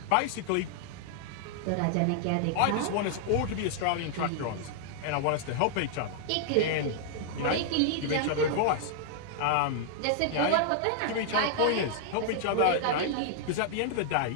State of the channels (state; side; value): different; both; correlation -0.01